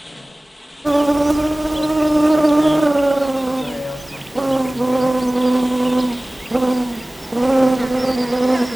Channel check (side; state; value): both; normal; correlation 0.98